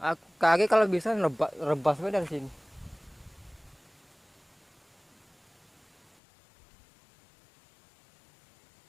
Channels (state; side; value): drops out; right; at 6.2 s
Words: kaki kalau bisa rebas dari sini.